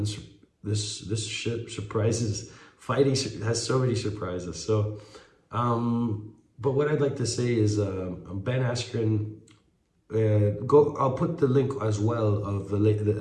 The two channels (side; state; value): both; identical; correlation 1.00